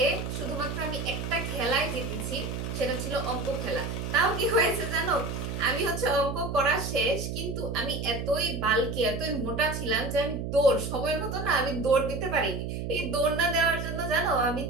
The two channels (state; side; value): noise; right; hum, 4 dB below the sound